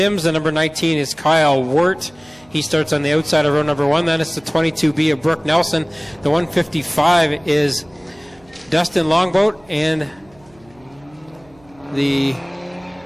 The number 19 is Kyle Wirt. He starts on the outside of row number 1. Then it's the 22B of Brooke Nelson. The 155 is Dustin Longboat, and the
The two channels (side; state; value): right; noise; hum, 29 dB below the sound